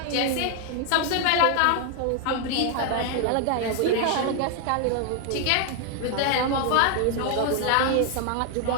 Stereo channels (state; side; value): different; both; correlation 0.01